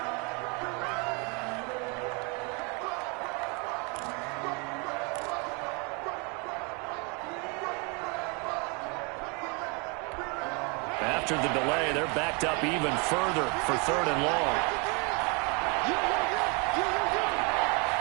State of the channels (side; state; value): left; quieter; 32.4 dB